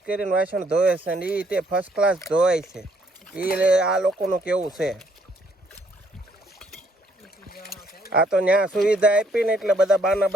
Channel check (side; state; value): both; normal; correlation 0.68